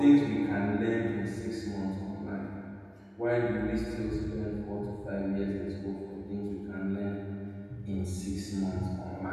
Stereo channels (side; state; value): both; identical; correlation 1.00